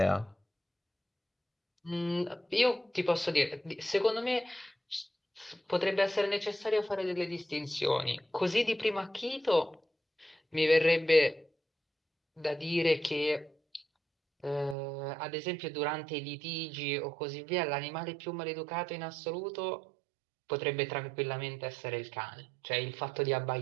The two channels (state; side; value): drops out; left; at 14.8 s